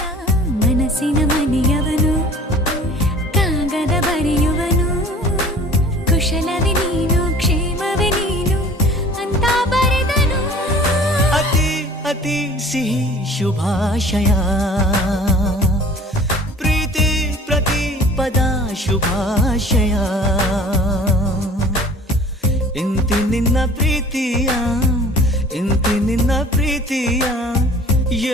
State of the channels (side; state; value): both; normal; correlation 0.47